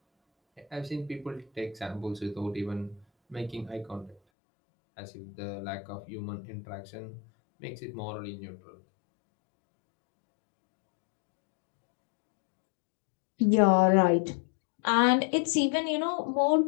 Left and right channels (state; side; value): drops out; right; at 4.2 s